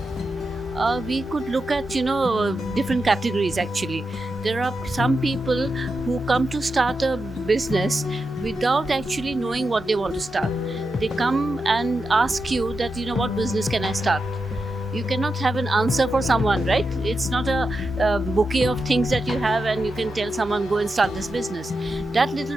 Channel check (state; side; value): normal; both; correlation 0.88